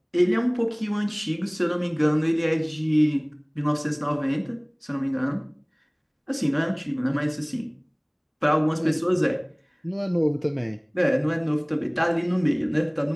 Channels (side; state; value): both; identical; correlation 1.00